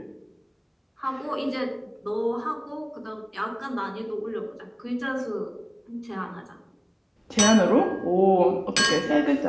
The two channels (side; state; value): both; identical; correlation 1.00